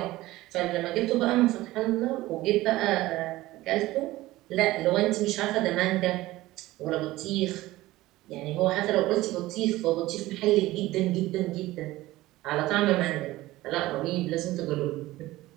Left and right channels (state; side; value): quieter; left; 17.6 dB